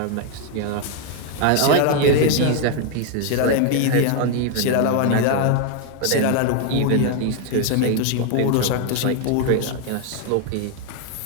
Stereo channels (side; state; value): both; different; correlation 0.00